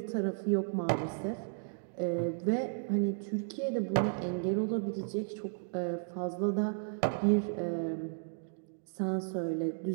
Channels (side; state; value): left; silent; digital silence